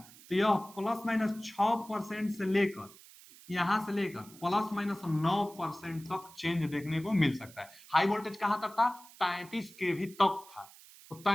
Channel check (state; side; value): noise; right; hiss, 21 dB below the sound